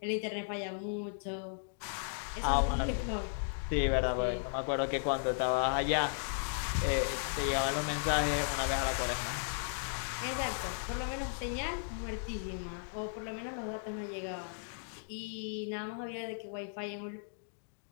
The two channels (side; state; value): right; silent; digital silence